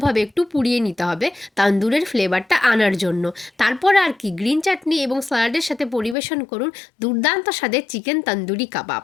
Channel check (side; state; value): right; drops out; at 6.2 s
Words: একটু পুড়িয়ে নিতে হবে তান্দুরের ফ্লেভারটা আনার জন্য। তারপর আর কি গ্রিন চাটনি এবং স্যালাডের সাথে পরিবেশন করুন দুর্দান্ত স্বাদের চিকেন তন্দুরি কাবাব।